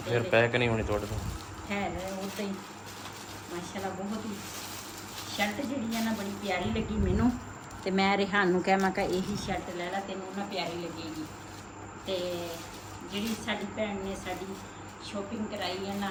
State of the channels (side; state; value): both; identical; correlation 1.00